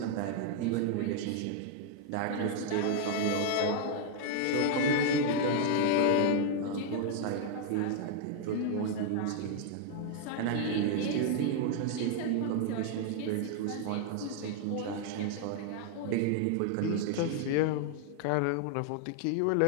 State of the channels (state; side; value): different; both; correlation 0.00